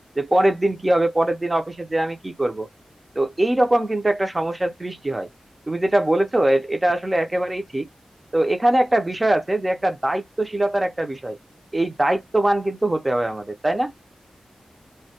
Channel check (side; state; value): both; normal; correlation 0.97